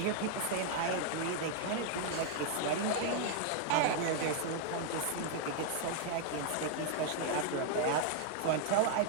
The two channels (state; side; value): different; both; correlation 0.00